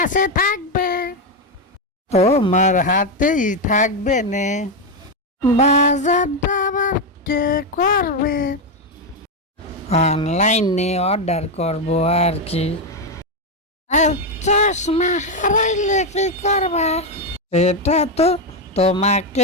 থাকবে? তোমার হাতেই থাকবে নে। বাজারটা আবার কে করবে? অনলাইনে অর্ডার করব আর কি। আর চশমা হারাইলে কি করবা? এটা তো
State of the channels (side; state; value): both; normal; correlation 0.06